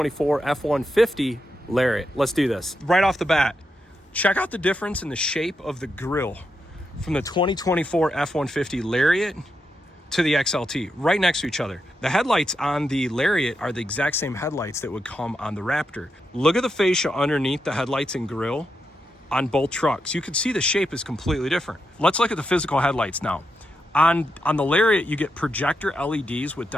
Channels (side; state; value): both; normal; correlation 0.84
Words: F-150 Lariat. Let's do this. Right off the bat, check out the difference in the shape of the grille from the 2024 F-150 Lariat to the XLT, right next to each other. The headlights on the Lariat are the exact same headlights that would come on the Raptor. Look at the fascia underneath the headlights and grille on both trucks. You can see the shape is completely different. Let's look at the physical headlights now. On the Lariat, you get projector LEDs with